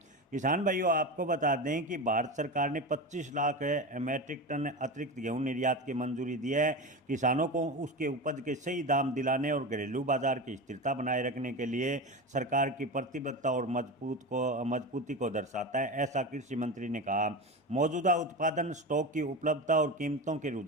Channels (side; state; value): both; normal; correlation 0.23